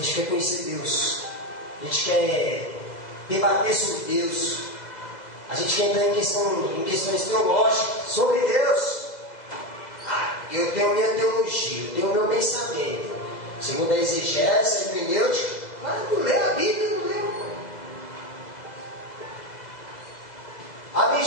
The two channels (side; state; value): right; late; 2.0 ms